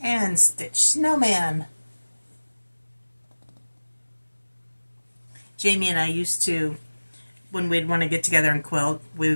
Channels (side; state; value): both; inverted; correlation -1.00